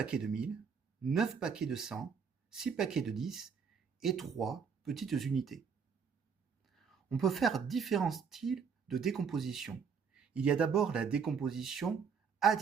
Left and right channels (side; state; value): left; quieter; 6.3 dB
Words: de 1000, 9 paquets de 100, 6 paquets de 10 et 3 petites unités. On peut faire différents styles de décomposition. Il y a d'abord la décomposition